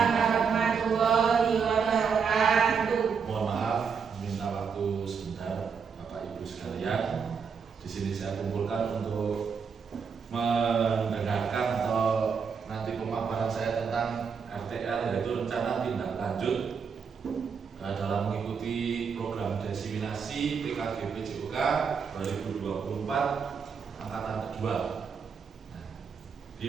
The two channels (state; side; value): quieter; left; 6.1 dB